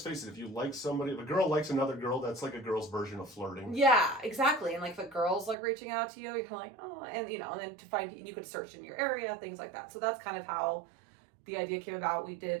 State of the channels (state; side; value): drops out; left; at 5.6 s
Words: face it, if you like somebody, if a girl likes another girl, that's like a girl's version of flirting. Yeah, exactly. And, like, if a girl's, like, reaching out to you, you're like, oh, and, and then to find, you could search in your area, things like that. So that's kind of how the idea came about. We